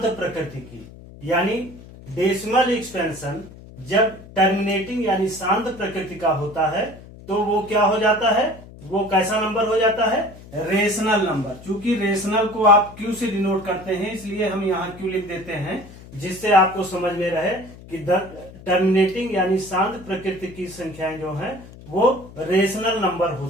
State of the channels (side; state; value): left; noise; hum, 18 dB below the sound